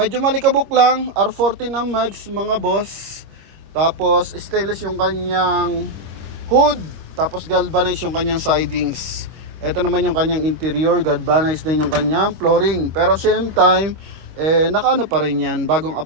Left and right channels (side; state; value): left; late; 25 ms